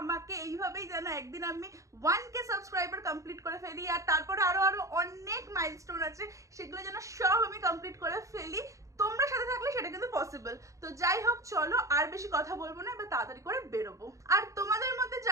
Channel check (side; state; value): left; late; 0.15 ms